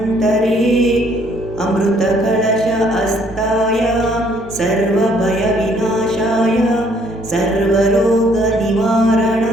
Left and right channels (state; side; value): normal; both; correlation 0.64